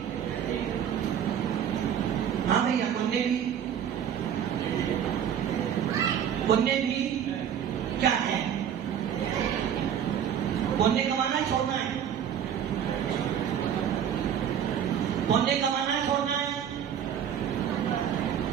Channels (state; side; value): quieter; left; 9.0 dB